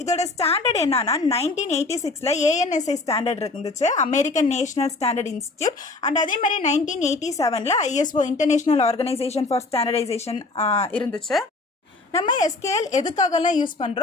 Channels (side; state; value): right; quieter; 3.4 dB